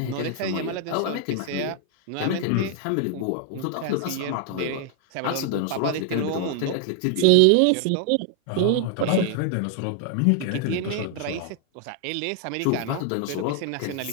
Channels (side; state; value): both; different; correlation 0.00